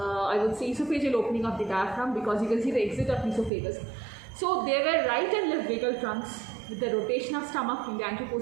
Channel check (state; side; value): drops out; left; at 3.5 s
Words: would say esophageal opening of the diaphragm, because you can see the exit of esophagus. So there were right and left vagal trunks. With the rotation of stomach in the